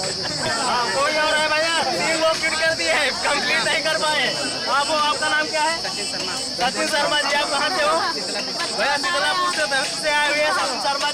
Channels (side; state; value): both; identical; correlation 1.00